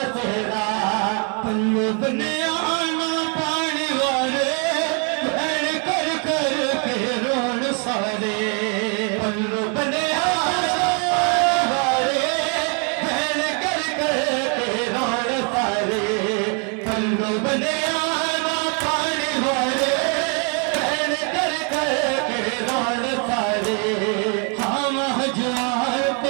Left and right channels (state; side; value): quieter; left; 38.2 dB